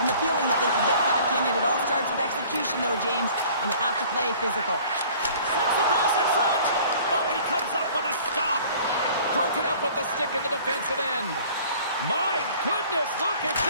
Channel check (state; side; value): inverted; both; correlation -0.50